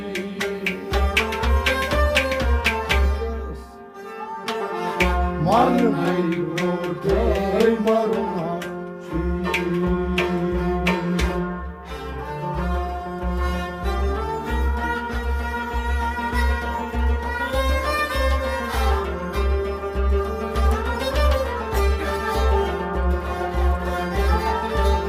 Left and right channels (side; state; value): both; identical; correlation 1.00